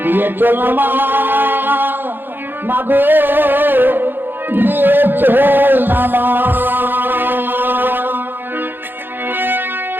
নিয়ে চল মা গো, নিয়ে চল না মা।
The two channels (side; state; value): left; late; 0.097 ms